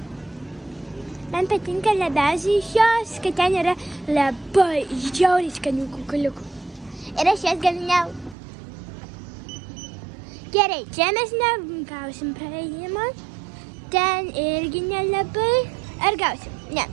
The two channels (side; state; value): left; drops out; at 8.3 s